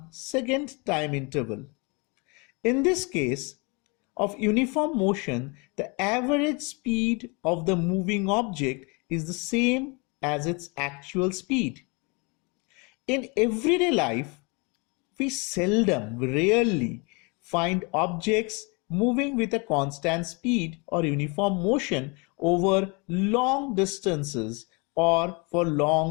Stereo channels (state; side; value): quieter; right; 30.4 dB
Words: second time interval. In this case of uniform motion, the average speed of the moving object is the same as its actual speed. In everyday life, we rarely find objects moving with a constant speed or uniform motion over long distances or for